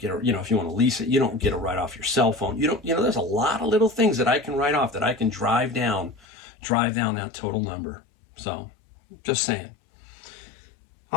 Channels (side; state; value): right; drops out; at 6.2 s